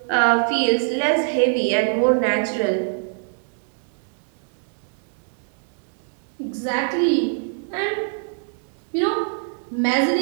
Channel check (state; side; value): silent; left; digital silence